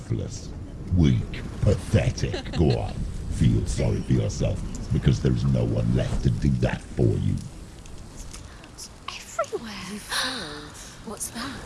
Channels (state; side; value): identical; both; correlation 1.00